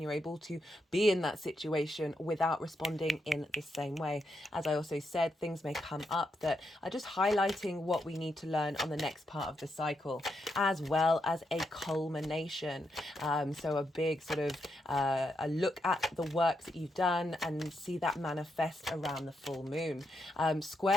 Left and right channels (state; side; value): normal; both; correlation 0.82